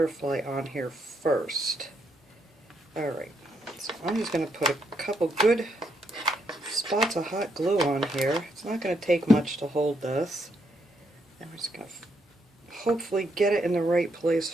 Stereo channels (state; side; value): normal; both; correlation 0.76